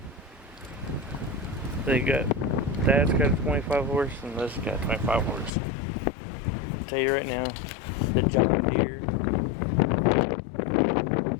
Dad's got a 25 horse and this got 25 horse. Tell you right now, the John Deere,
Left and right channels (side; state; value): right; drops out; at 5.5 s